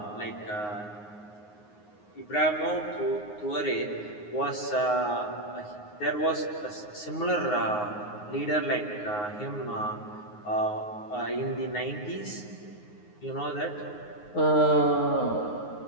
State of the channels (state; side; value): late; right; 9.6 ms